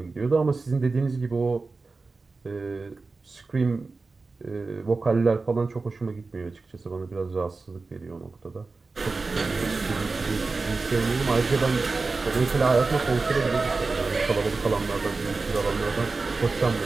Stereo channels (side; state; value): left; quieter; 3.9 dB